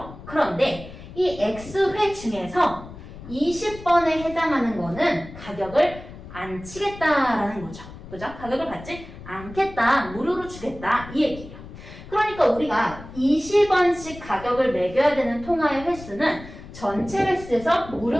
그런데 이 X회 중에서 20번에 해당하는 거는 가격을 안 치겠다라는 거죠. 그죠? 가격을 받지 않겠다, 무료로 주겠다 이 얘기예요. 그러니까 우리가 20원씩 가격을 매겨야 되는 통화의 횟수는 전체 횟수에서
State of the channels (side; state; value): left; noise; rumble, 15 dB below the sound